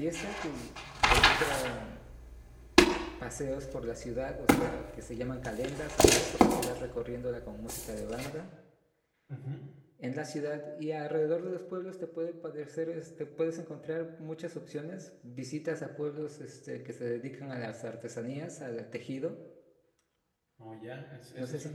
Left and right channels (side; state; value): both; identical; correlation 1.00